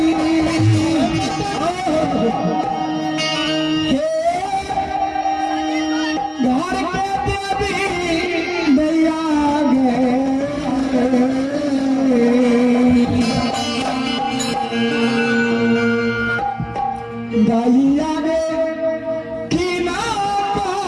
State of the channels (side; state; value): both; identical; correlation 1.00